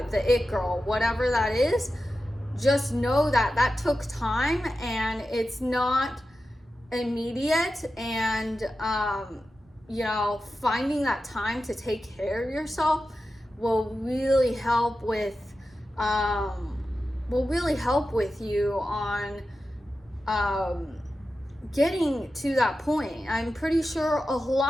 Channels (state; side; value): normal; both; correlation 0.92